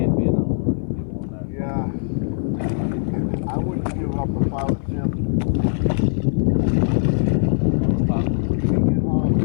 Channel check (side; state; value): right; silent; 58 dB below the other